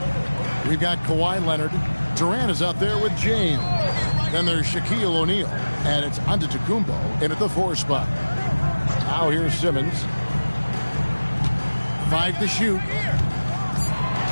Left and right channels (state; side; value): inverted; both; correlation -1.00